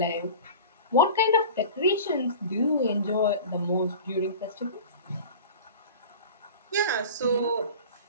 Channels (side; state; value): both; inverted; correlation -0.36